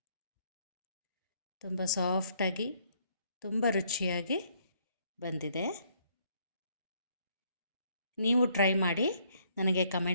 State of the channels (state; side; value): inverted; both; correlation -0.68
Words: ತುಂಬ ಸಾಫ್ಟಾಗಿ, ತುಂಬ ರುಚಿಯಾಗಿ ಬಂದಿದೆ. ನೀವು ಟ್ರೈ ಮಾಡಿ ನನಗೆ